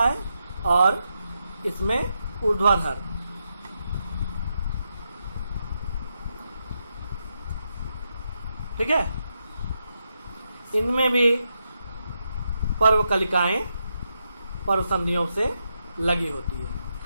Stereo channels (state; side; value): inverted; both; correlation -0.84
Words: और इसमें ऊर्ध्वाधर। ठीक है। इनमें भी पर्व कलिकाएं पर्व संधियों से लगी होती है